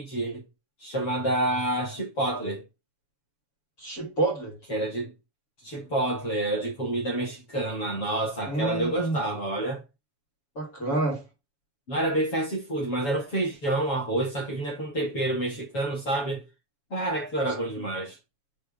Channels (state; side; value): late; right; 7.1 ms